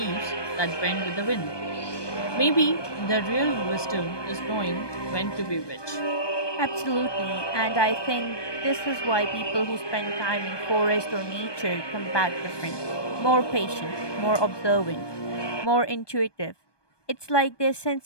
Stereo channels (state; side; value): late; right; 1.2 ms